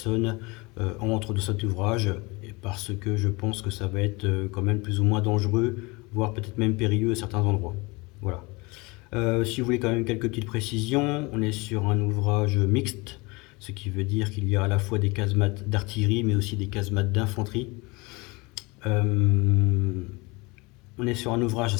entrent dans cet ouvrage parce que je pense que ça va être quand même plus ou moins dangereux, voire peut-être même périlleux à certains endroits. Voilà. Si vous voulez quand même quelques petites précisions, on est sur un ouvrage mixte, ce qui veut dire qu'il y a à la fois des casemates d'artillerie mais aussi des casemates d'infanterie. Euh, on est sur un ouvrage à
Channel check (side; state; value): right; quieter; 25.6 dB